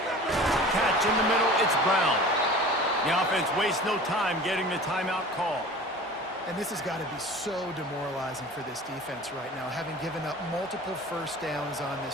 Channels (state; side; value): normal; both; correlation 0.40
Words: Catch in the middle, it's Brown. The offense wastes no time getting the timeout call. And this has got to be so demoralizing for this defense right now. Having given up multiple first downs on